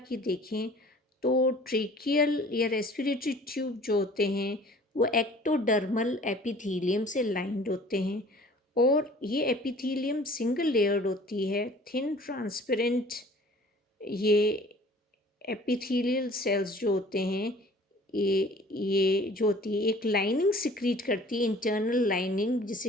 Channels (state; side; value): normal; both; correlation 0.50